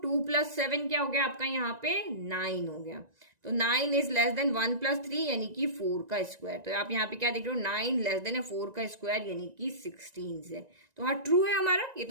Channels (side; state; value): left; late; 1.9 ms